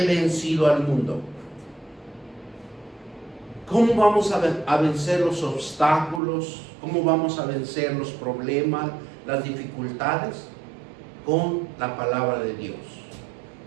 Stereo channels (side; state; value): left; drops out; at 6.2 s